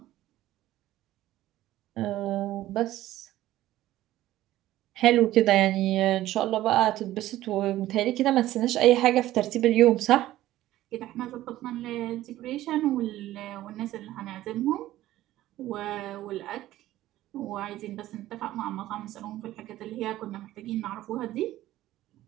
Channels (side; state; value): left; quieter; 14.8 dB